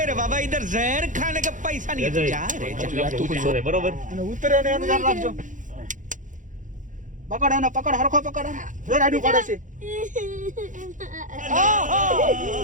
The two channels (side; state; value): left; late; 0.37 ms